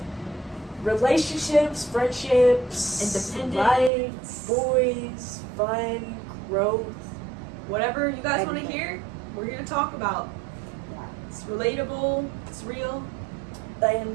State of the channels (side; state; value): left; drops out; at 3.9 s